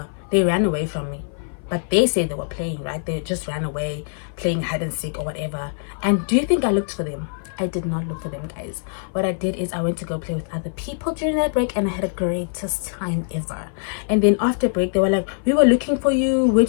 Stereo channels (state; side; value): silent; right; 57 dB below the other